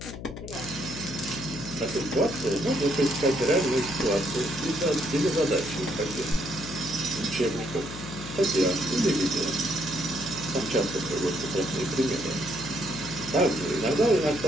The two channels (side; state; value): left; noise; hum, 11 dB below the sound